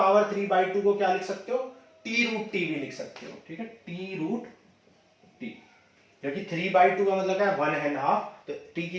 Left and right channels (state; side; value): identical; both; correlation 1.00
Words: 3/2 को क्या लिख सकते हो, t√t भी लिख सकते हो। ठीक है, t√t, क्योंकि 3/2 का मतलब क्या है, 1.5, तो t